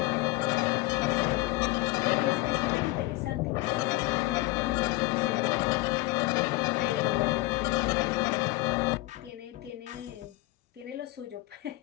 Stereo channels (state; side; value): quieter; right; 20.1 dB